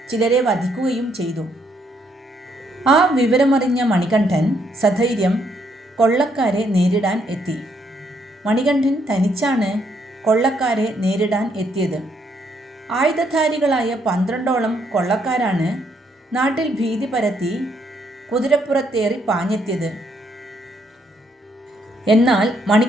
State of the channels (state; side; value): normal; both; correlation 0.73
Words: ചിലരെ വധിക്കുകയും ചെയ്തു. ആ വിവരമറിഞ്ഞ മണികണ്ഠൻ സധൈര്യം കൊള്ളക്കാരെ നേരിടാൻ എത്തി. മണികണ്ഠൻ തനിച്ചാണ് കൊള്ളക്കാരെ നേരിടാൻ എത്തിയത്. ആയുധധാരികളായ 12ഓളം കൊള്ളക്കാരാണ് നാട്ടിൽ ഭീതി പരത്തി കുതിരപ്പുറത്തേറി പാഞ്ഞെത്തിയത്. എന്നാൽ